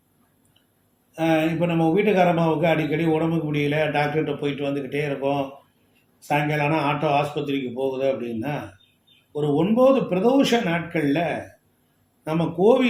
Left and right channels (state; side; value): identical; both; correlation 1.00